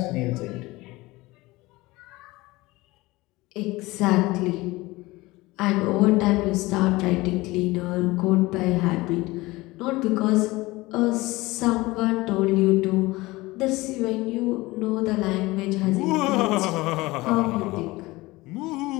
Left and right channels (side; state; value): right; quieter; 20.7 dB